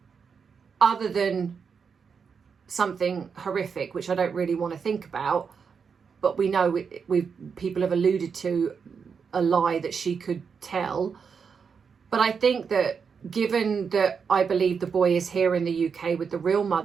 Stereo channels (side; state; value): left; quieter; 6.1 dB